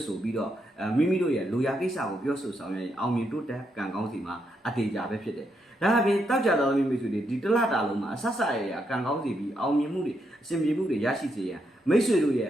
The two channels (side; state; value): both; normal; correlation 0.79